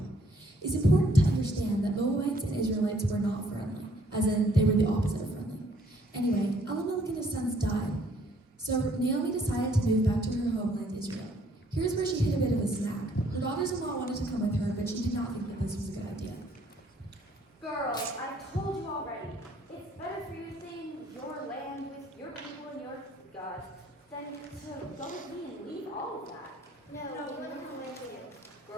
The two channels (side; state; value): both; normal; correlation 0.63